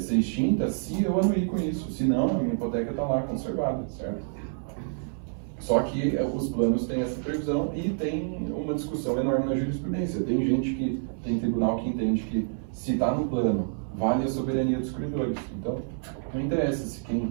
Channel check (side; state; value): left; silent; 59 dB below the other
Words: extinta se eu anuir com isso, senão a minha hipoteca está lá conservada, certo? Só que os planos têm essa previsão e tem uma discussão enorme na jurisprudência. Tem tribunal que entende que se está no plano, vale a soberania dos credores. Então, não interessa se